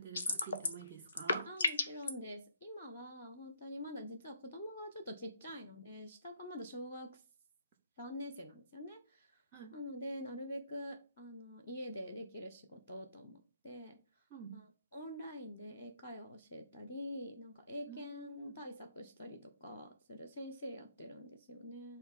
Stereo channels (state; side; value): inverted; both; correlation -0.70